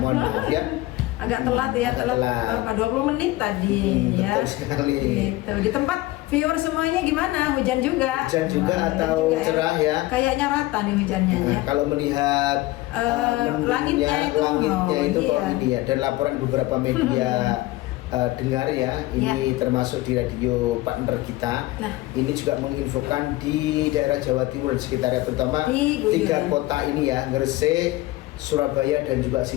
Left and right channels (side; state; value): right; quieter; 18.5 dB